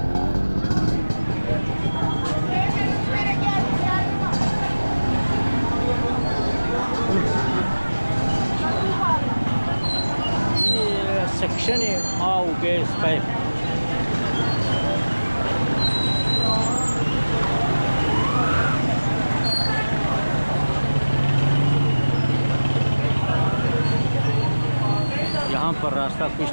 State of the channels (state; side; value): inverted; both; correlation -1.00